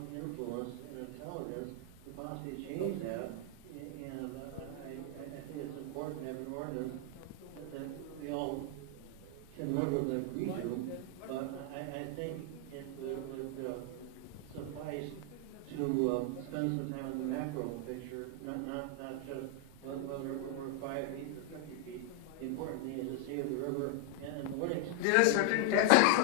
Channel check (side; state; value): both; different; correlation 0.00